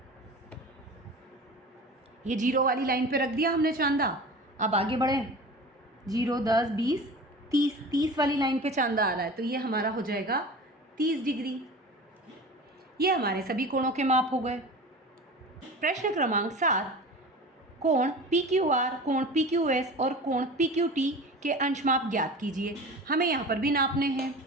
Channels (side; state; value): both; normal; correlation 0.35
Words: ये 0 वाली लाइन पे रख दिया हमने चांदा। अब आगे बढ़ें, 0, 10, 20, 30 वाली लाइन पे चांदा आ रहा है, तो ये हमारा हो जाएगा 30 डिग्री। ये हमारे सभी कोणों के माप हो गए। प्रश्न क्रमांक 7, कोण PQR, कोण PQS और कोण PQT के अंश माप ज्ञात कीजिए। हमें यहाँ पर भी नापने हैं।